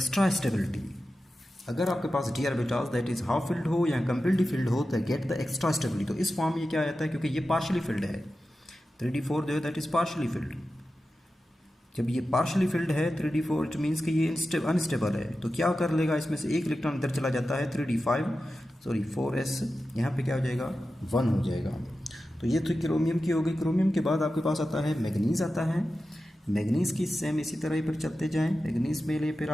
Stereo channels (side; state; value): both; normal; correlation 0.93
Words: stability. अगर आपके पास D orbitals that is half filled हो या कंप्लीटली फिल्ड हो तो गेट द एक्स्ट्रा स्टेबिलिटी। तो इस फॉर्म में ये क्या आता है, क्योंकि ये पार्शली फिल्ड है, 3D4 जो है दैट इज पार्शली फिल्ड। जब ये पार्शली फिल्ड है 3D4 इट मीन्स कि ये अनस्टेबल है, तो क्या कर लेगा, इसमें से एक इलेक्ट्रॉन इधर चला जाता है 4s, यहाँ पे क्या हो जाएगा 1 हो जाएगा। तो ये तो क्रोमियम की हो गई। क्रोमियम के बाद आपके पास आता है मैग्नीज आता है। मैग्नीज की सेम इसी तरह ही पर चलते जाएं, मैग्नीज में लिए फिर